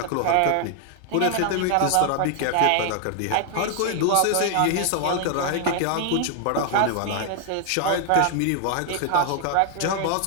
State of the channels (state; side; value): different; both; correlation 0.00